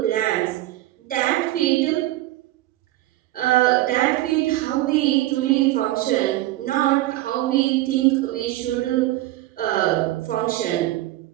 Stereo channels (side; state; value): left; quieter; 16.3 dB